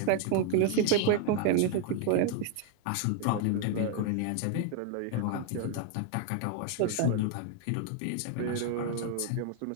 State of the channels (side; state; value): both; different; correlation 0.00